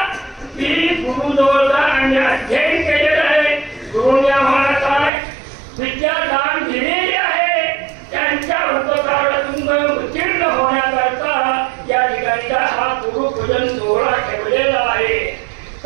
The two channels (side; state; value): left; drops out; at 5.1 s